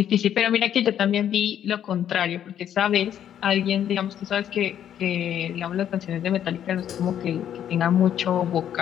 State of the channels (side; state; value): right; quieter; 10.0 dB